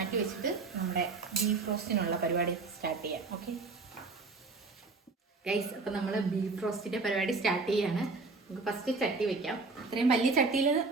വെച്ചിട്ട് നമ്മുടെ ബീഫ് റോസ്റ്റിനുള്ള പരിപാടി സ്റ്റാർട്ട് ചെയ്യാം. ഓക്കെ ഗൈസ്, അപ്പം നമ്മൾ ബീഫ് റോസ്റ്റിൻ്റെ പരിപാടി സ്റ്റാർട്ട് ചെയ്യാണ്. നമുക്ക് ഫസ്റ്റ് ചട്ടി വെക്കാം. ഇത്രയും വലിയ ചട്ടിയിൽ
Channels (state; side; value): quieter; left; 3.9 dB